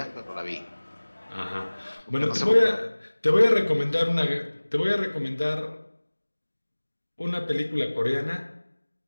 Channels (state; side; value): inverted; both; correlation -1.00